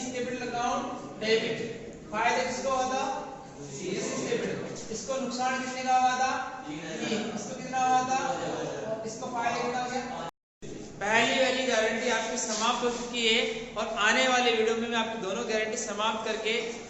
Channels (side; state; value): both; identical; correlation 1.00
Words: कैपिटल अकाउंट डेबिट। फायदा किसको हुआ था, सी कैपिटल। इसको नुकसान कितने का हुआ था, इसको कितना हुआ था, इसको फायदा कितना हो गया। पहली वाली गारंटी आपकी समाप्त हो चुकी है और आने वाले वीडियो में मैं आपकी दोनों गारंटी समाप्त करके